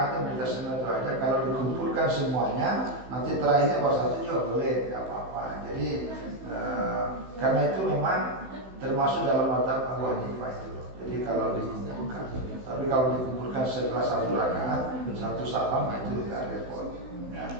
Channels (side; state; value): left; late; 16 ms